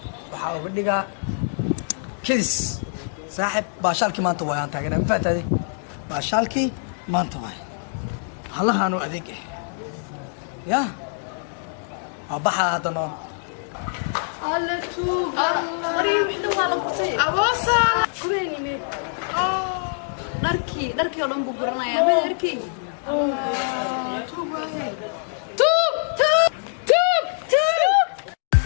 waxa uga dhiga kidis saaxib baashaalki maanta waa aan taagnaa ma faatay baashaalki maanta waa halahan oo adeeg ya abaha hadana alla tuug mariyo wixii waa la gurtay aboosa kubeeni meed dharkii oo dhan buu guranayaa mid arkay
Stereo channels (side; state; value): right; silent; digital silence